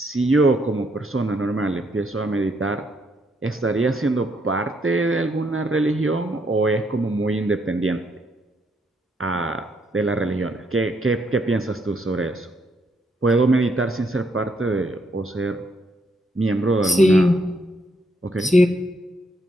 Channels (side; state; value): both; normal; correlation 0.73